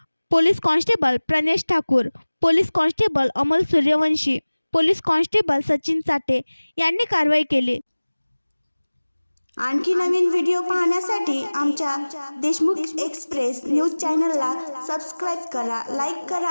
police constable Pranesh Thakur, police constable Amol Suryavanshi, police constable Sachin Chate यांनी कारवाई केली। आणखी नवीन व्हिडिओ पाहण्यासाठी आमच्या देशमुख एक्सप्रेस न्यूज चॅनलला सबस्क्राईब करा, लाईक करा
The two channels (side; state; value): both; inverted; correlation -1.00